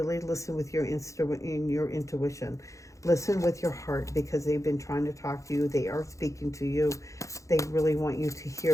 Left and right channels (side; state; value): right; late; 0.15 ms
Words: listen with your intuition. Listen with your heart, because they've been trying to talk to you. They are speaking to you. They really want you to